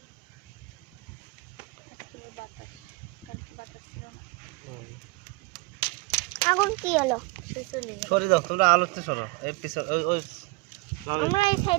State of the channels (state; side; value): quieter; left; 24.5 dB